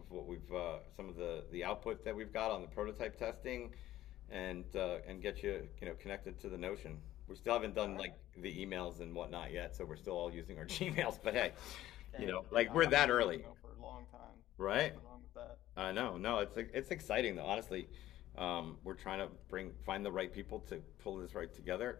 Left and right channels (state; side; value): quieter; right; 14.1 dB